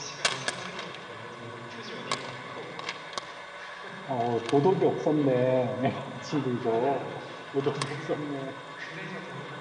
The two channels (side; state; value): both; identical; correlation 1.00